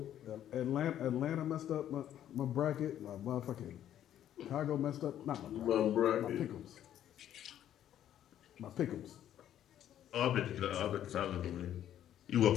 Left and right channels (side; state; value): right; quieter; 11.1 dB